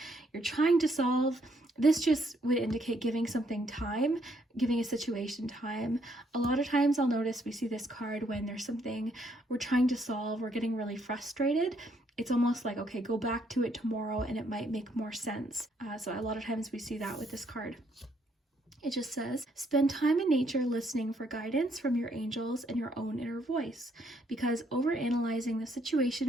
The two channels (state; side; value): normal; both; correlation 0.71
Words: you're trying to solve. This just would indicate giving something time, giving a situation time. A lot of times I'll notice we see this card when there's something we're trying to solve, we're getting really frustrated. It's almost like, okay, go back to it tomorrow and it might make more sense. So a lot of times we see that with this card. It just says, spend time in nature listening for guidance from your angels and your own inner voice, because overanalyzing the